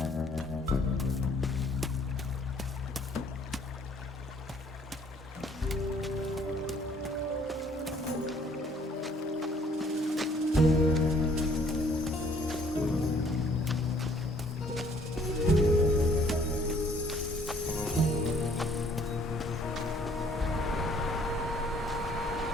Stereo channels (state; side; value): normal; both; correlation 0.60